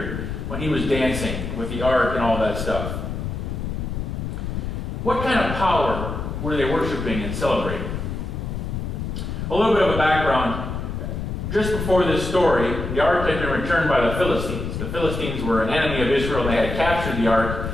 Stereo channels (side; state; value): left; noise; rumble, 4 dB below the sound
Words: when he was dancing with the ark and all that stuff? What kind of power were they worshiping and celebrating? A little bit of a background. Just before this story, the ark had been returned by the Philistines. The Philistines were an enemy of Israel, and they had captured the